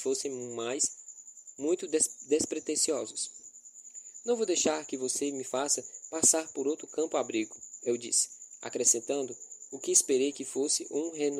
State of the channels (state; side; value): identical; both; correlation 1.00